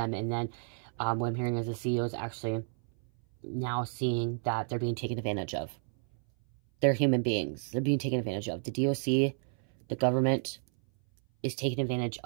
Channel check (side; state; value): left; silent; 57 dB below the other